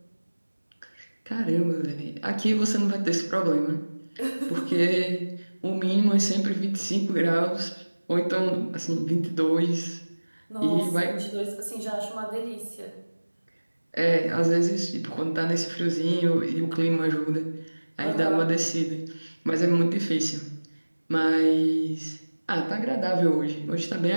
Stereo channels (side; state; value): both; inverted; correlation -1.00